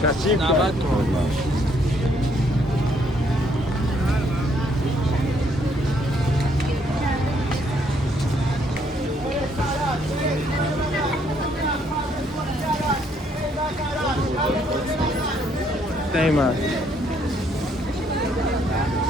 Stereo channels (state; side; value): normal; both; correlation 0.69